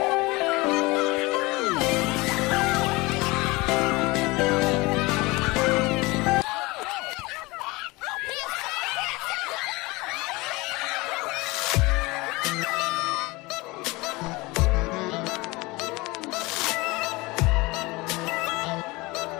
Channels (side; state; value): right; quieter; 23.2 dB